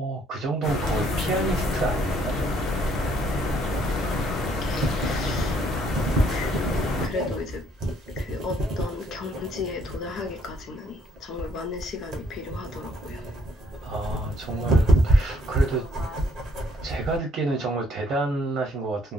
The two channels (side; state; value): both; normal; correlation 0.66